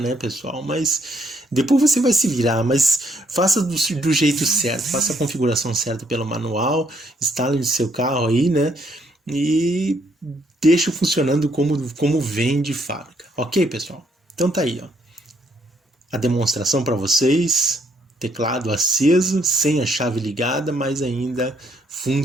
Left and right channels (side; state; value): both; normal; correlation 0.70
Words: pessoal? Mas depois você vai se virar, mas faça do jeito certo, faça a configuração certa pelo manual, instale no seu carro aí, né? E deixe funcionando como vem de fábrica. Ok, pessoal? Então tá aí, ó. A demonstração para vocês. Teclado aceso, sem a chave ligada, mas ainda